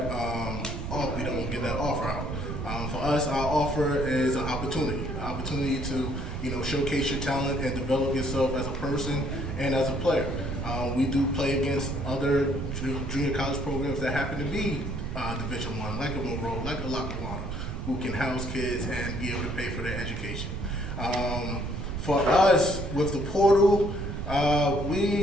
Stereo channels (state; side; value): noise; right; rumble, 5 dB below the sound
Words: we don't give that offer out. For us, our offer is an opportunity to, showcase your talent and develop yourself as a person and as a player. We do play against other junior college programs that happen to be Division I, like a Monroe, like a Lackawanna, who can house kids and be able to pay for their education. For us, with the portal, our